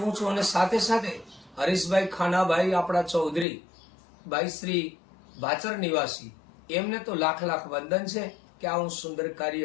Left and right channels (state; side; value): drops out; right; at 3.5 s